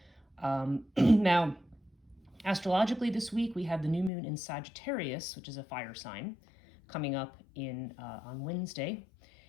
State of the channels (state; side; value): drops out; right; at 4.1 s